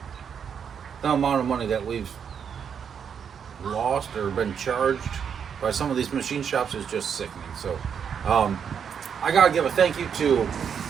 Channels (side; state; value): left; quieter; 7.4 dB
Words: the amount of money that we've lost or been charged by some of these machine shops is just sickening. So I gotta give a thank you to